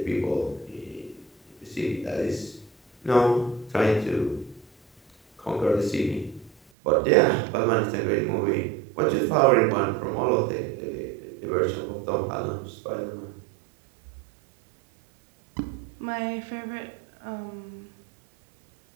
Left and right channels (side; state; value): left; drops out; at 6.6 s